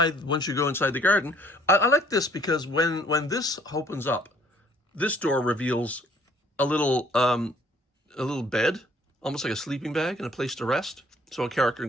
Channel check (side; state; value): both; normal; correlation 0.59